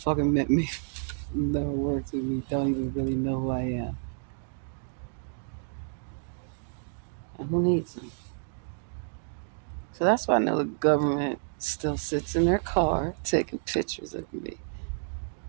met me, never worked with me, don't even really know who I am. And who needs them? So that's why I know the government still sits in their car taking pictures of me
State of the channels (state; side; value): silent; left; digital silence